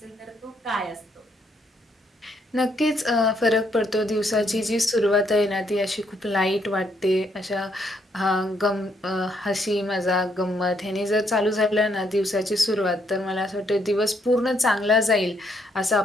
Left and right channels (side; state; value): both; normal; correlation 0.73